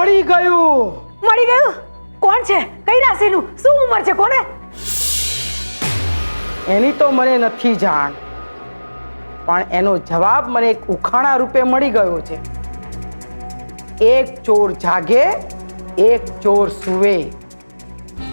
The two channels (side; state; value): both; inverted; correlation -1.00